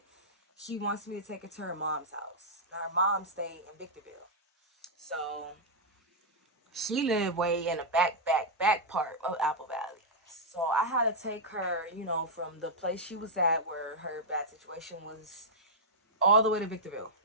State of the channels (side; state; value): both; normal; correlation -0.06